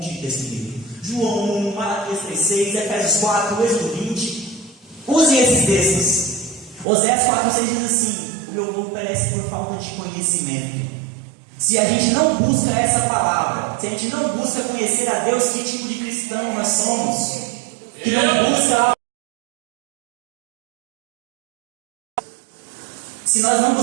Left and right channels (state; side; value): drops out; left; at 6.9 s